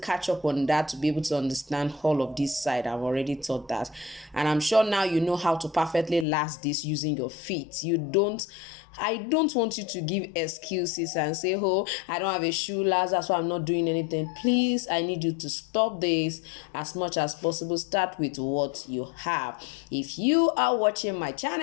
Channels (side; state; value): right; drops out; at 6.2 s